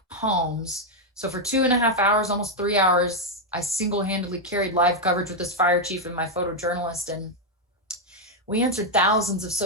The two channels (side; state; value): both; normal; correlation 0.01